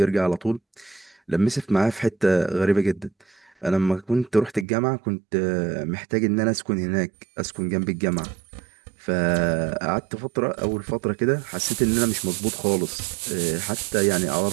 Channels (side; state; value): left; drops out; at 4.7 s